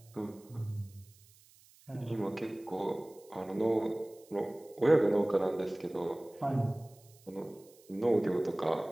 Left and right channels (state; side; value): noise; right; hiss, 27 dB below the sound